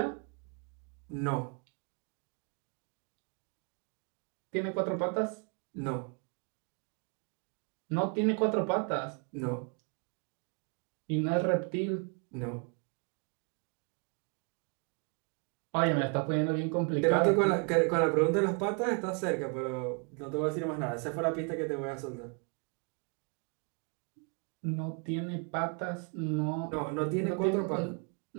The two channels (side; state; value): left; quieter; 37.5 dB